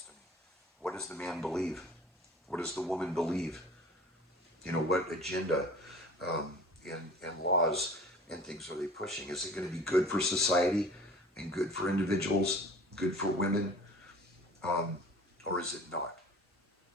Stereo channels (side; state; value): both; normal; correlation 0.44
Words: to me. What does the man believe? What does the woman believe? You know, what agenda um, and laws and things are they pushing? Is it going to be good for society and good for individuals, good for women, um, or is it not?